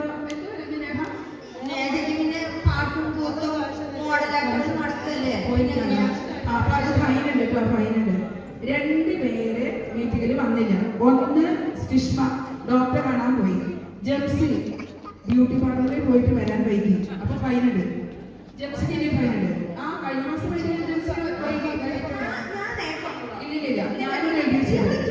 നേഹ നേഹയ്ക്ക് പാട്ടും കൂത്തും മോഡലായിട്ട് നടക്കല്ലേ. അപ്പൊ അത് ഫൈൻ ഉണ്ട് കേട്ടോ, ഫൈൻ ഉണ്ട്. 2 പേര് മീറ്റിങ്ങിൽ വന്നില്ല. ഒന്ന് സ്റ്റിഷ്മ ഡോക്ടറെ കാണാൻ പോയി. ജംസി ബ്യൂട്ടി പാർലറിൽ പോയിട്ട് വരാൻ വൈകി. അപ്പൊ ഫൈൻ ഉണ്ട്. ജംസിക്ക് ഇനി ഫൈൻ ഉണ്ട്. കഴിഞ്ഞ മാസം വൈകി ജംസി വൈകി. ഇല്ലില്ല, ഞാനൊരു ഐഡിയ ചെയ്തു.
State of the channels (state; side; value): identical; both; correlation 1.00